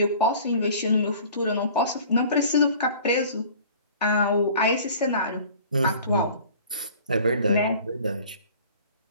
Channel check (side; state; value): both; inverted; correlation -0.47